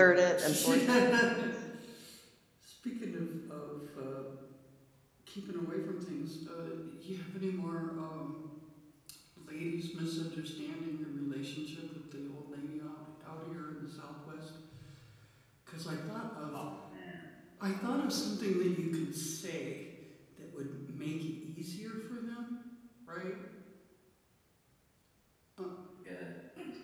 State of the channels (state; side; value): identical; both; correlation 1.00